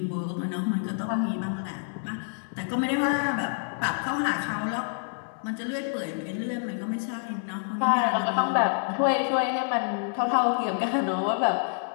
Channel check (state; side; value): silent; right; 60 dB below the other